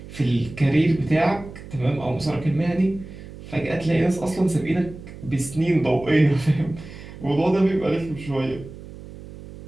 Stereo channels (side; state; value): right; noise; hum, 15 dB below the sound